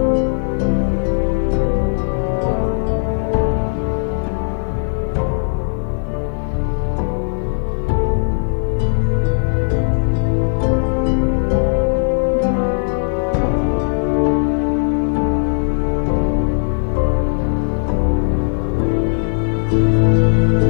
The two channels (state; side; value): silent; right; 64 dB below the other